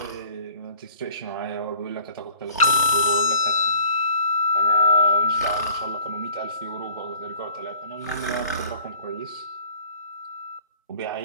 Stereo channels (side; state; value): both; inverted; correlation -0.51